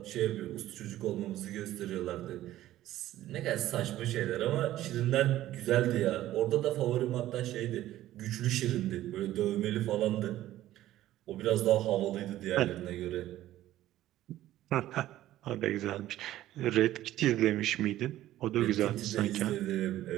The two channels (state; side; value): quieter; left; 14.2 dB